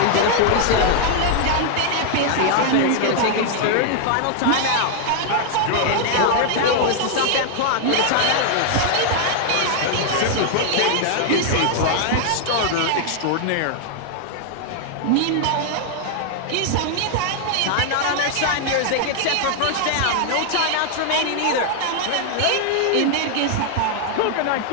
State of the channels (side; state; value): both; different; correlation 0.00